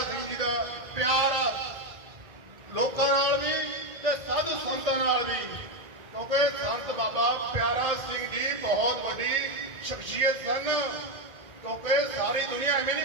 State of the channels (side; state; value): left; late; 1.2 ms